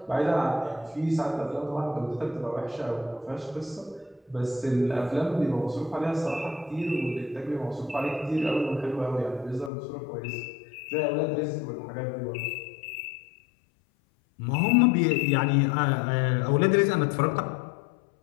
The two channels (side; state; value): right; drops out; at 9.7 s